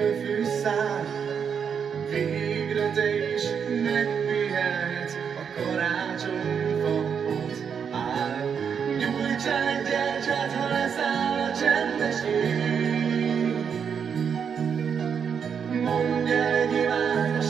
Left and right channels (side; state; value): left; quieter; 7.0 dB